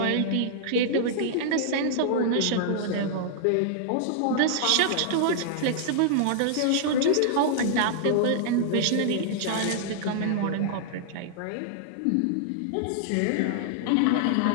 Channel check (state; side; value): different; both; correlation -0.01